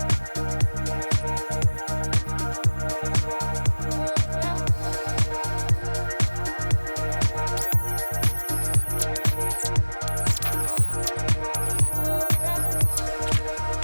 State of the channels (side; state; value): both; inverted; correlation -1.00